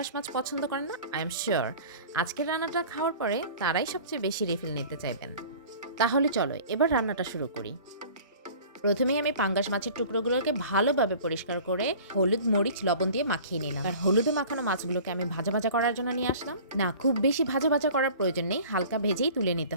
মাছ পছন্দ করেন না, আই এম শিওর আজকের রান্নাটা খাওয়ার পরে তারাই সবচেয়ে বেশি রিফিল নিতে চাইবেন। তাহলে চলো এবার রান্নাটা শুরু করি। প্রথমেই আমি পাঙ্গাস মাছের টুকরোগুলোকে ভালোভাবে পরিষ্কার করে হলুদ মরিচ লবণ দিয়ে মাখিয়ে নিলাম। আর হলুদে মাখানো মাছগুলোকে আমি ভাজা ভাজা করার জন্য নিয়ে আসলাম। না, খুব বেশি ভাজা ভাজা করার প্রয়োজন নেই, হালকা ভেজেই তুলে নিতে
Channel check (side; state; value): both; inverted; correlation -0.44